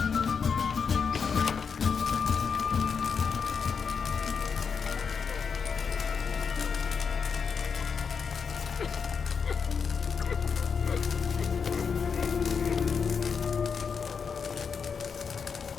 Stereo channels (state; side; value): quieter; right; 6.0 dB